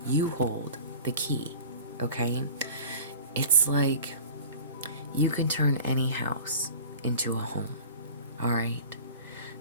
you hold the key, okay? It's like you can turn any house into a home, all right?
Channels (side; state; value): both; inverted; correlation -0.40